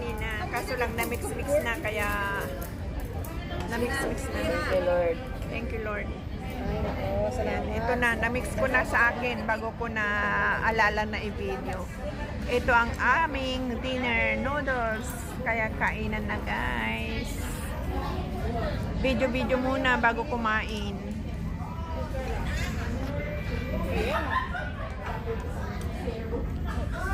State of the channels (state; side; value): identical; both; correlation 1.00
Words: Kaso lang na-mix-mix na, kaya na-mix-mix na. Thank you, Lord. Thank you, Lord. Ay, Ayan, ito na, na-mix ko na sa akin bago ko na alala na i-video. Ito ang aming dinner noodles. Kaya kainan na guys. Video-video muna bago kumain.